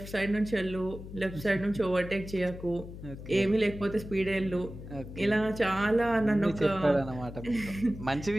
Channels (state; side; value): noise; left; hum, 12 dB below the sound